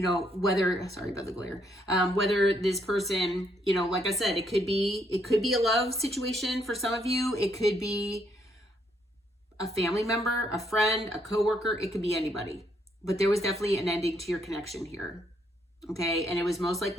know, sorry about the glare, whether this person, you know, like I said, it could be a love situation for some of you. It could be a family member, a friend, a coworker. It could be anybody. But there was definitely an ending to your connection here. Okay. And it was most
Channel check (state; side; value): normal; both; correlation 0.72